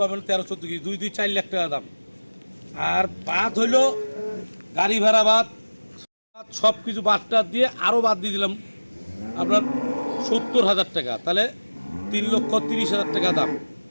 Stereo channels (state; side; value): inverted; both; correlation -1.00